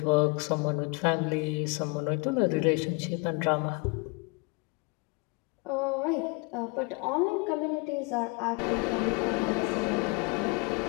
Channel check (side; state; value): right; quieter; 29.2 dB